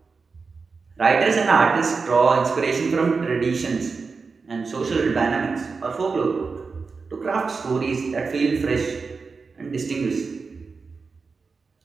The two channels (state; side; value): quieter; left; 4.7 dB